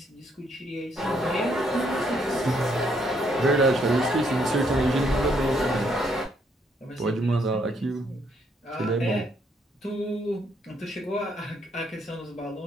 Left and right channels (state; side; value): normal; both; correlation 0.71